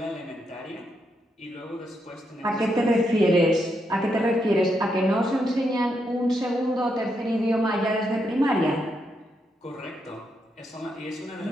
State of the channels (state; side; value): normal; both; correlation 0.81